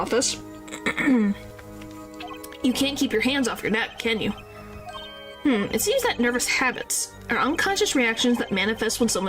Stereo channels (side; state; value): both; identical; correlation 1.00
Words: you can't keep your hands off your neck, can you? It seems that nervous habits are unconscious reactions that manifest when